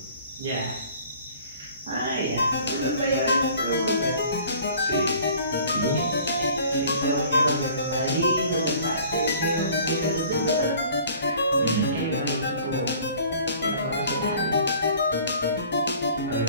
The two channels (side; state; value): both; inverted; correlation -0.50